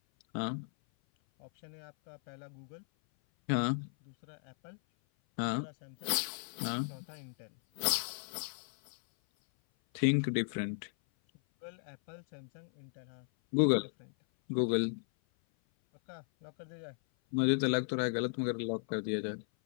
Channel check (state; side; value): silent; right; 54 dB below the other